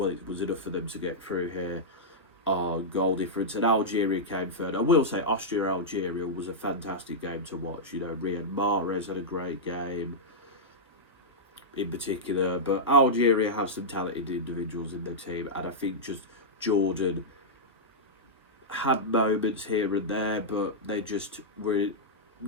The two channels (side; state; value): both; normal; correlation -0.09